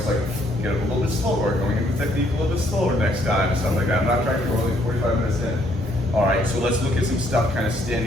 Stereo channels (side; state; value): both; normal; correlation 0.68